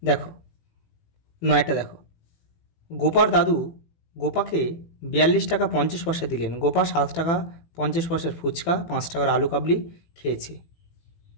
দেখো 9টা দেখো গোপার দাদু গোপাকে 42 টাকা 50 পয়সা দিলেন। গোপা 7 টাকা 50 পয়সার ফুচকা 5 টাকার আলু কাবলি খেয়েছে।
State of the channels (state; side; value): late; right; 18 ms